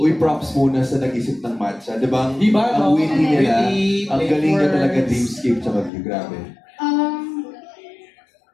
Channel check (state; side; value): drops out; right; at 5.9 s